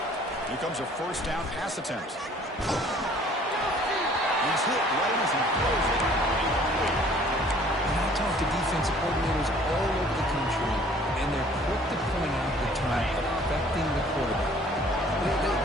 Here comes a first down pass attempt. He's hit right as he throws it. And I talk to defensive coordinators all over the country, and they're quick to point out the term affecting the quarterback.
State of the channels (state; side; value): normal; both; correlation 0.55